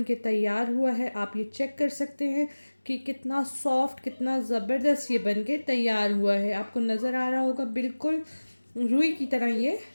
के तैयार हुआ है। आप ये चेक कर सकते हैं कि कितना सॉफ्ट, कितना ज़बरदस्त ये बन के तैयार हुआ है। आपको नज़र आ रहा होगा बिल्कुल रुई की तरह ये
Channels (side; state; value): both; inverted; correlation -1.00